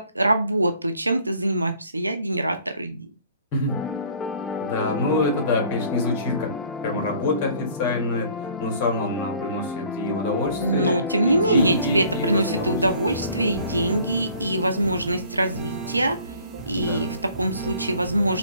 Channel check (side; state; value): both; inverted; correlation -0.53